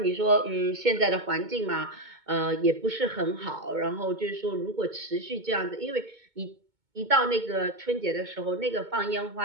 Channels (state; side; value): late; left; 2.2 ms